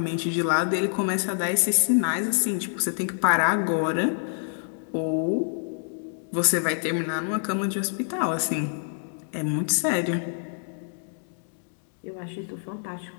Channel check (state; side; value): silent; right; digital silence